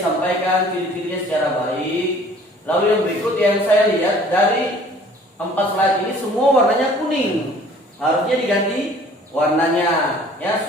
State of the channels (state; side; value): normal; both; correlation 0.52